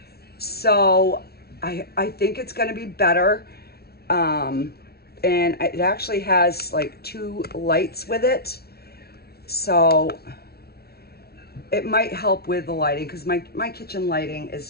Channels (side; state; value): right; late; 0.45 ms